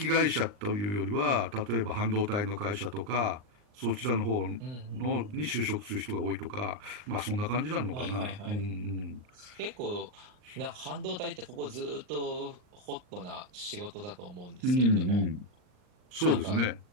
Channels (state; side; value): late; left; 39 ms